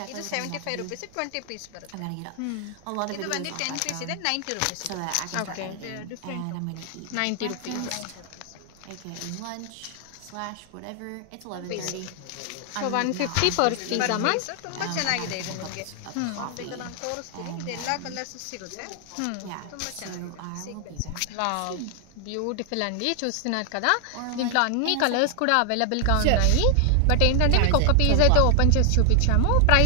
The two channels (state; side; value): different; both; correlation 0.00